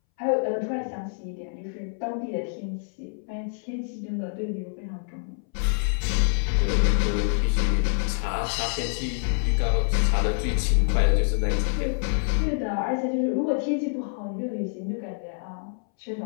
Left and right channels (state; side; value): silent; right; 61 dB below the other